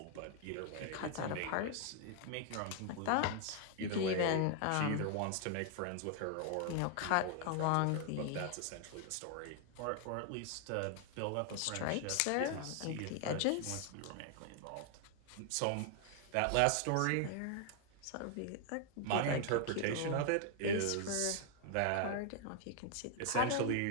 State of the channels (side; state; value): both; different; correlation 0.00